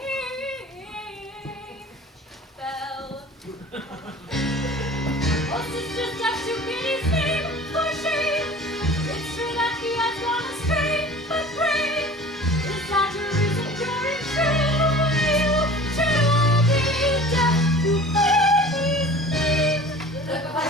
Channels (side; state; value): both; normal; correlation 0.42